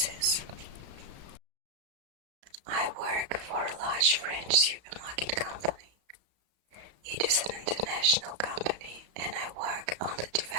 I work for a large French supermarket company. It is an international company, and I work on the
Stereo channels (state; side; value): late; left; 34 ms